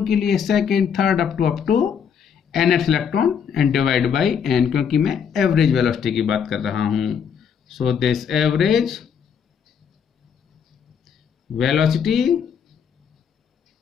के लिए second third up to nth electron and divide by n, क्योंकि मैं एवरेज वेलोसिटी की बात कर रहा हूं. So this average velocity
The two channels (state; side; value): quieter; right; 7.3 dB